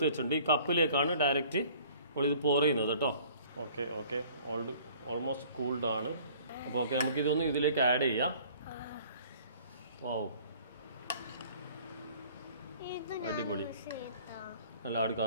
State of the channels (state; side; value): inverted; both; correlation -0.53